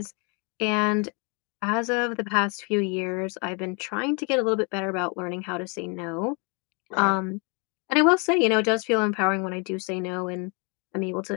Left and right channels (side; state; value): right; quieter; 33.4 dB